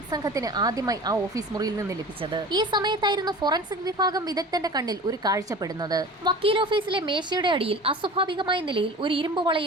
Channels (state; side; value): normal; both; correlation 0.38